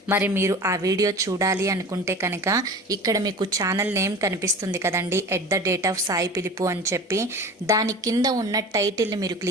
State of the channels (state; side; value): normal; both; correlation 0.37